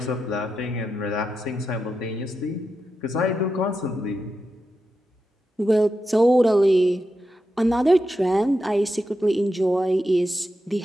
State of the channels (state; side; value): normal; both; correlation 0.88